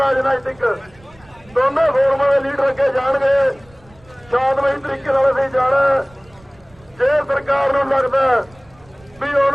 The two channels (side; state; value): right; noise; rumble, 27 dB below the sound